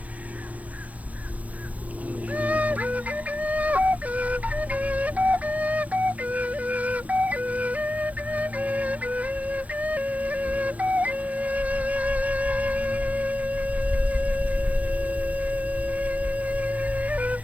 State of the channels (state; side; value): late; left; 0.071 ms